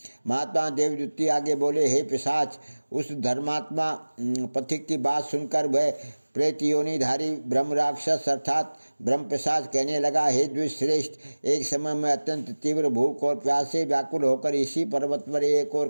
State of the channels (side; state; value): both; inverted; correlation -1.00